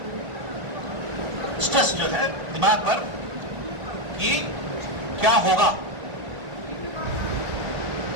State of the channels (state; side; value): late; left; 1.5 ms